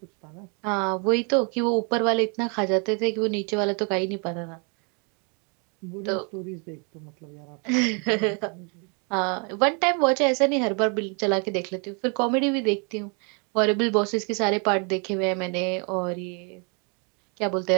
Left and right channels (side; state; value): left; quieter; 35.6 dB